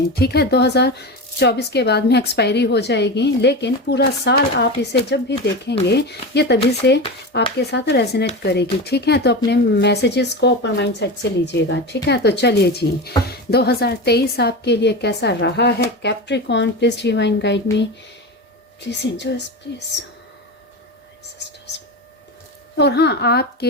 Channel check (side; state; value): both; normal; correlation 0.23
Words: ठीक है, 2024 के बाद में एक्सपायरी हो जाएगी, लेकिन पूरा साल आप इसे जब भी देखेंगे ये तभी से आपके साथ रेजोनेट करेगी। ठीक है, तो अपने मैसेजेस को ओपन माइंड सेट से लीजिएगा। ठीक है, तो चलिए जी, 2023 आपके लिए कैसा रहा है Capricorn. Please divine guide me, please angels, please. और हाँ, आपके